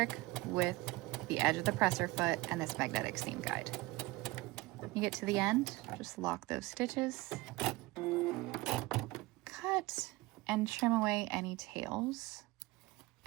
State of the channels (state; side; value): quieter; left; 21.1 dB